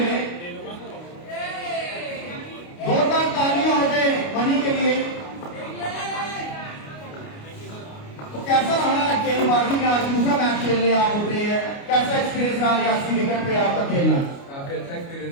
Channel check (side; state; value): right; late; 29 ms